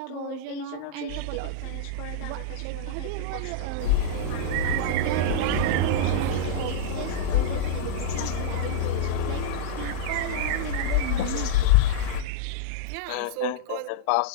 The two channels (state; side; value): different; both; correlation -0.03